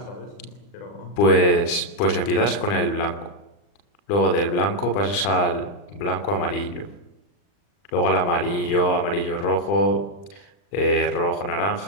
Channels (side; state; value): right; late; 40 ms